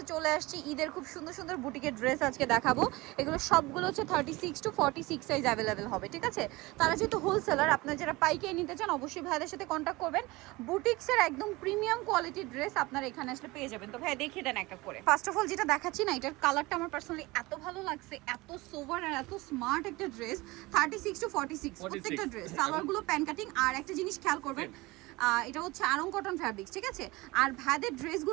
চলে আসছি। ঈদের খুব সুন্দর সুন্দর বুটিকের ড্রেস আজকে দেখাবো। এগুলো সবগুলো হচ্ছে 36 to 46 সাইজ অ্যাভেলেবেল হবে, ঠিক আছে? তারা যেহেতু হোলসেলার, আপনারা যারা পাইকারি নিতে চান অবশ্যই ভাইদের সাথে কন্ট্যাক্ট করবেন। বুটিক্সের একদম প্রিমিয়াম কোয়ালিটির ড্রেস আপনারা এখানে আসলে পেয়ে যাবেন। তো ভাই দেখিয়ে দেন একটা করে। ফার্স্ট অফ অল যেটা দেখাচ্ছি না, এটার কালারটা আমার পার্সোনালি এত ভালো লাগছে, এত সোবার আর এত স্মার্ট একটা ড্রেস। 36 to 46 প্রত্যেকটা ড্রেস। সালোয়ারগুলো প্যান কাটিং। আর একটা জিনিস খেয়াল করবেন, এটা হচ্ছে আরং কটন ফ্যাব্রিক্স, ঠিক আছে? আর ভাইদের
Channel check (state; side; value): quieter; left; 21.8 dB